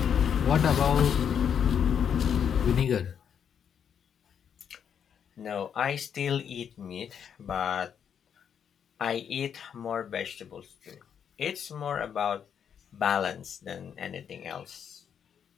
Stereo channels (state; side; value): quieter; right; 8.0 dB